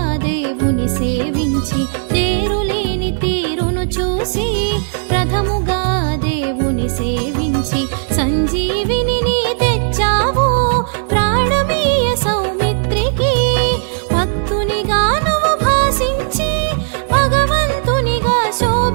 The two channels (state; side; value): silent; left; digital silence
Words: దేవుని సేవించి తేరులేని తీరును చూసి రథముగా దేవుని సేవించి సంజీవిని నీ తెచ్చావు ప్రాణమీయ సౌమిత్రికి భక్తునిగా నువ్వు భాసించి భగవంతునిగా